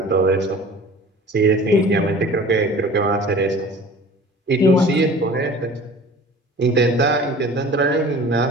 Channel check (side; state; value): both; normal; correlation 0.44